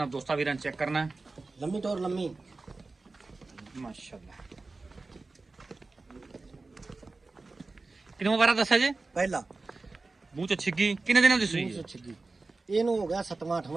ਦੋਸਤਾਂ ਵੀਰਾਂ ਚੈੱਕ ਕਰਨਾ। ਲੰਮੀ ਟੋਰ ਲੰਮੀ ਮਾਸ਼ਾਅੱਲਾ। ਕਿੰਨਾ ਵਾਰਾ ਦੱਸਿਆ ਜੇ? ਪਹਿਲਾ ਮੂੰਹ ਚ ਛਿੱਗੀ ਕਿੰਨੇ ਦਿਨਾਂ ਦੀ ਸੂਈ? ਮੂੰਹ ਛਿੱਗੀ ਇਹਨੂੰ ਹੋ ਗਿਆ 7ਵਾਂ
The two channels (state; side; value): quieter; left; 3.6 dB